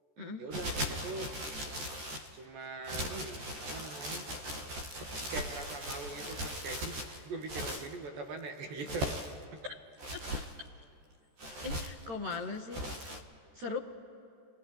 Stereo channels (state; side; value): late; left; 14 ms